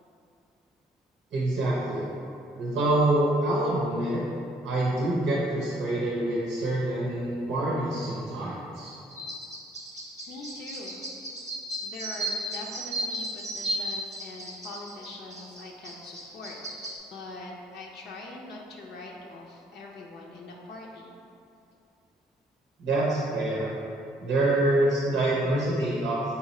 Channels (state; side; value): normal; both; correlation 0.64